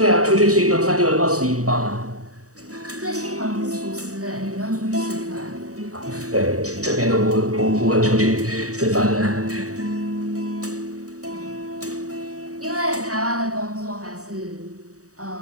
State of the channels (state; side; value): late; left; 0.66 ms